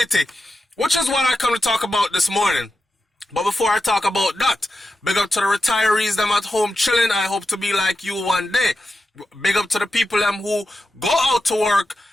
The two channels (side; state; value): both; normal; correlation 0.90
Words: which is what I come to talk about this morning. But before I talk about that, big up to the retirees them at home chilling. I hope to be like you one day. Big up to the people them who go out to work